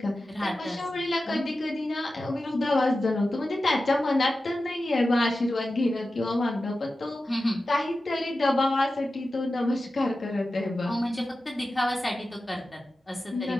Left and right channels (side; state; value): both; normal; correlation 0.93